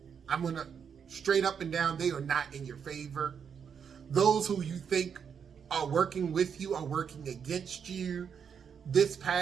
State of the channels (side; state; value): left; quieter; 7.1 dB